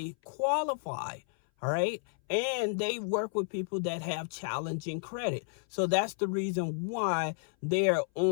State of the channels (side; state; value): right; silent; 57 dB below the other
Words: qualify. All right. And they work with people that have challenging credit. So that's the reason why they're